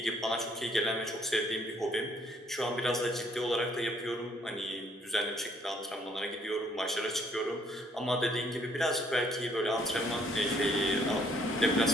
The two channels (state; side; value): normal; both; correlation 0.66